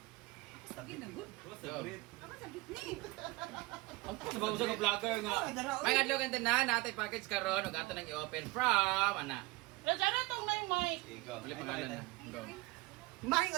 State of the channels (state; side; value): quieter; left; 22.9 dB